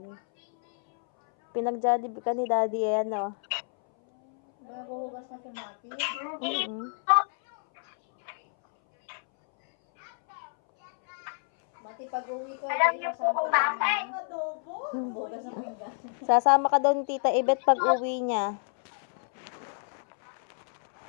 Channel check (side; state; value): right; silent; 59 dB below the other